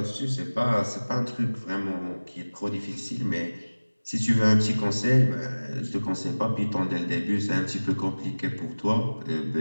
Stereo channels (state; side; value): inverted; both; correlation -1.00